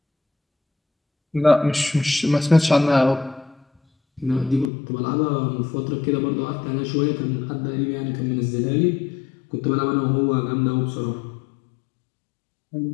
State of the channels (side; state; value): right; drops out; at 4.7 s